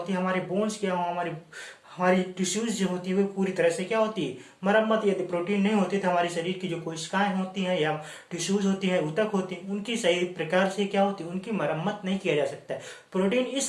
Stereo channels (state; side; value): identical; both; correlation 1.00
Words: है, हमारे बोन्स क्या हो, हमारी हमारी टिश्यूज जो होती है वो पूरी तरह से क्या होती है, मरम्मत। यदि प्रोटीन नहीं होती तो हमारे शरीर की जो कोशिकाएं होती हैं या टिश्यूज होती हैं, ऊतक होती हैं, उनकी सही प्रकार से क्या होती है, उनकी मरम्मत नहीं किया जा सकता है। प्रोटीन